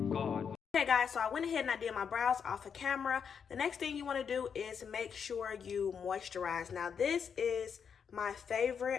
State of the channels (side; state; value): right; quieter; 6.9 dB